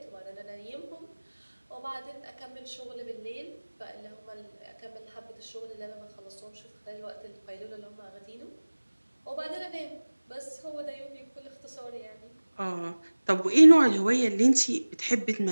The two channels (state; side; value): inverted; both; correlation -1.00